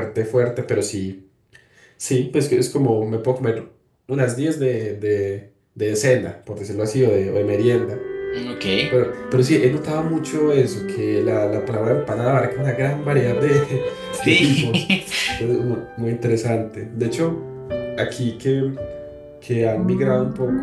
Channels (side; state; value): both; identical; correlation 1.00